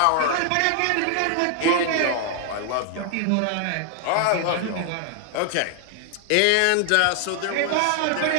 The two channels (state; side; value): different; both; correlation 0.00